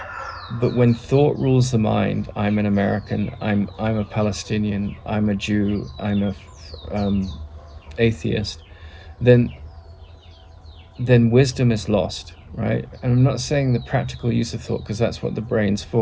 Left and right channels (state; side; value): identical; both; correlation 1.00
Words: But when thought rules the mind, I'm an American, I'm a Palestinian, I'm a Jew, I'm a atheist, then wisdom is lost, right? And I'm not saying the practical use of thought, because that's what the brain's